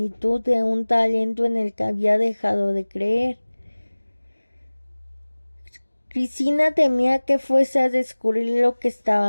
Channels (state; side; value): inverted; both; correlation -1.00